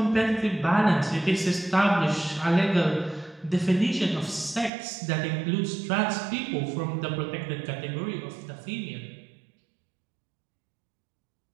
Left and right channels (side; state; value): left; drops out; at 4.7 s